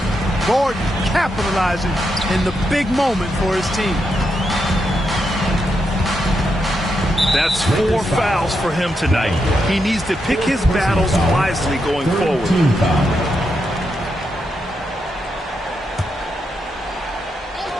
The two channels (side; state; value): both; normal; correlation 0.83